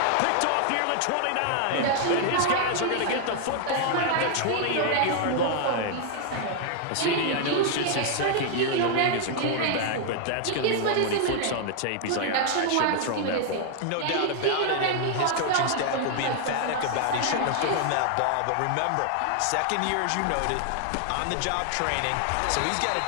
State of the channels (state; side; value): different; both; correlation 0.00